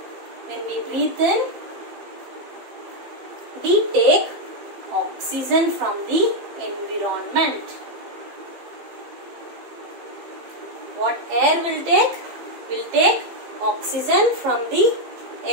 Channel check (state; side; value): late; left; 15 ms